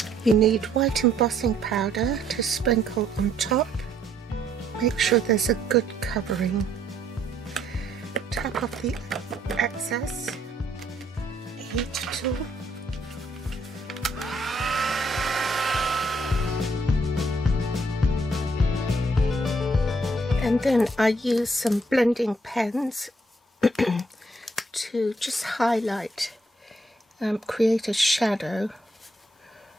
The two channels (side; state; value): both; normal; correlation 0.69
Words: You need white embossing powder to sprinkle on top. Make sure there's a good covering. Tap off the excess. Heat tool. And then I use some blending pens to just highlight, create a shadow